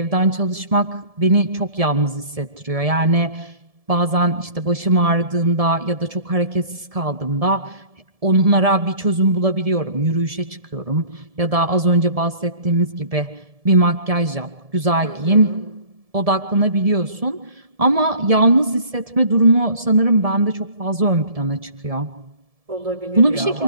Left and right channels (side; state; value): left; late; 1.7 ms